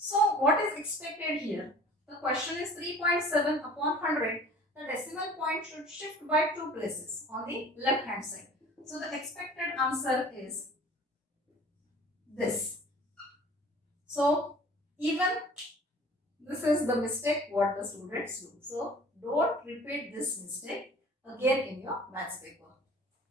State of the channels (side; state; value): both; normal; correlation 0.47